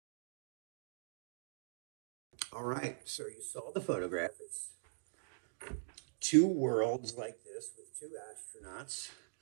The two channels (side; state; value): left; silent; digital silence